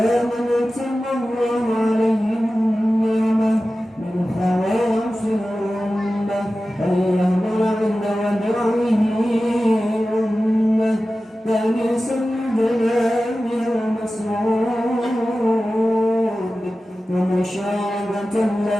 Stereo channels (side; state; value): both; normal; correlation 0.95